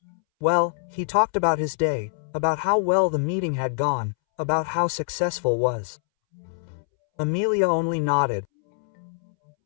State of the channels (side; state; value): right; silent; 62 dB below the other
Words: Well, he talked about his day, about how well the meeting had gone, about how successful was. Amelia only nodded.